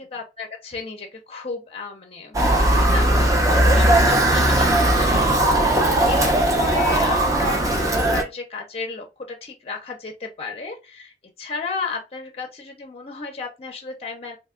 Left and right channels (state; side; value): normal; both; correlation 0.50